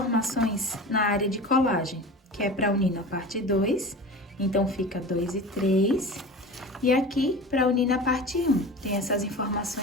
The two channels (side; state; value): both; normal; correlation 0.34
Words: na área de colagem, que é para unir na parte 2, então fica 2 e 3. E aqui, para unir na parte 1, tem essas